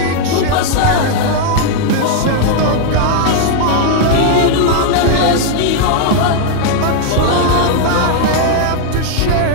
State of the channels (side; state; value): both; different; correlation 0.00